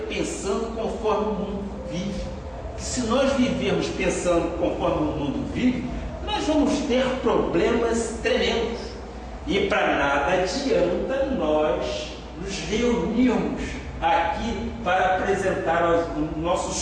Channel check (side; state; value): both; identical; correlation 1.00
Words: pensando conforme o mundo vive. Que se nós vivermos pensando conforme o mundo vive, nós vamos ter problemas tremendos. E para nada adianta nós nos reunirmos aqui para apresentar os